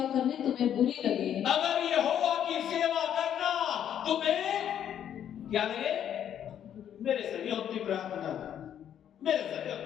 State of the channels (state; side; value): quieter; right; 9.8 dB